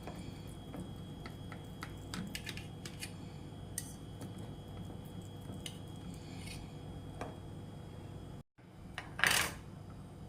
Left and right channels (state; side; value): identical; both; correlation 1.00